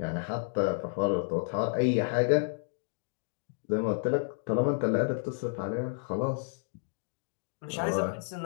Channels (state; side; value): silent; right; digital silence